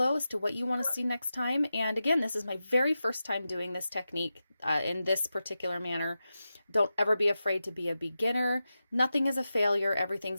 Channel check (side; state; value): both; inverted; correlation -0.91